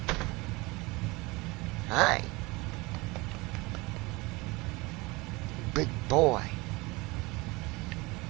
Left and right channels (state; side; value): quieter; left; 24.0 dB